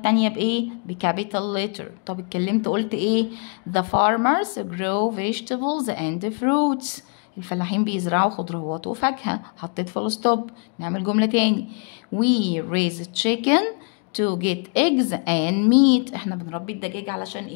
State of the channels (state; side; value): quieter; right; 39.1 dB